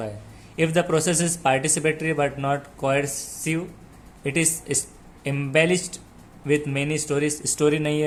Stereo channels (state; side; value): identical; both; correlation 1.00